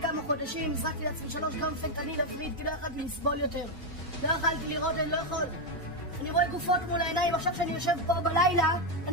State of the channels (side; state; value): both; normal; correlation 0.04